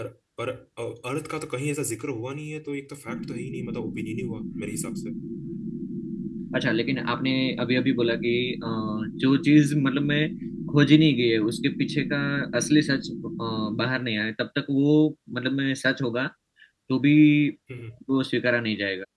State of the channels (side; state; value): both; identical; correlation 1.00